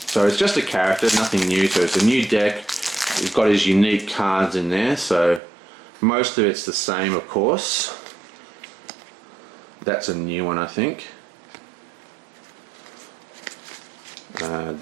So it's just a character, nothing new. So it's a new deck. He's got his unique cards in there. So Most of it's the same, of course. That's a new one, I think.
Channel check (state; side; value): drops out; left; at 5.4 s